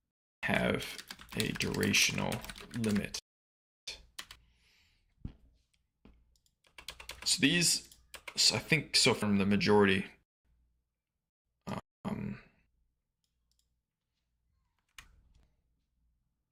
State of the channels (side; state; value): both; identical; correlation 1.00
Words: have a durational limit? So these, I think, so from the majority,